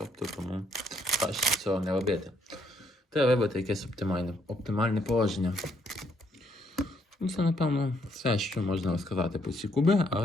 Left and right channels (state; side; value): normal; both; correlation 0.71